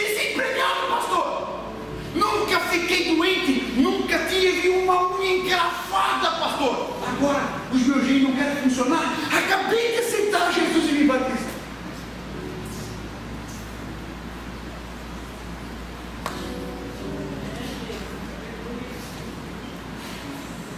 pastor. Nunca fiquei doente, nunca tive uma unha encravada, pastor. Agora os meus gêmeos não querem funcionar. Acabei de aceitar Jesus e me batizar.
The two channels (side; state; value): both; identical; correlation 1.00